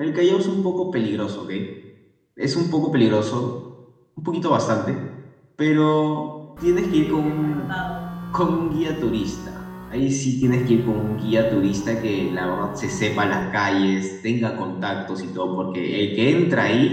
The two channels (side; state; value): both; identical; correlation 1.00